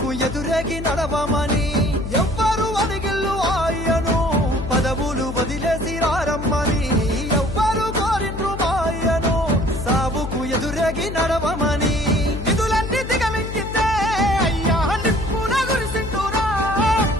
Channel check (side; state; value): left; noise; hum, 8 dB below the sound